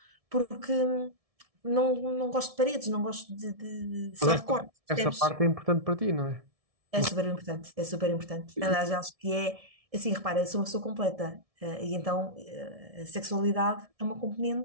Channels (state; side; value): late; left; 1.7 ms